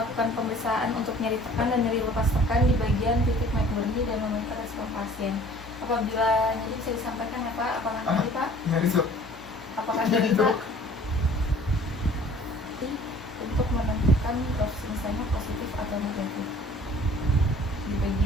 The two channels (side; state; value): both; normal; correlation 0.50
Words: pemeriksaan untuk nyeri tekan dan nyeri lepas tekan di bagian titik McBurney dan memonitor respon pasien. Apabila nyeri bisa disampaikan ya Pak, apakah nyeri Pak? Nyari sok. Apakah nyeri Pak? Untuk menentukan misalnya positif atau negatif di